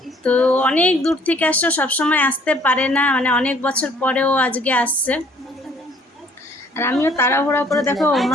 তো অনেক দূর থেকে আসছে, সবসময় আসতে পারে না, মানে অনেক বছর পরেও আজকে আসছে। আর আমিও তাড়াহুড়া করে দেখো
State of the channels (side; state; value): both; normal; correlation 0.59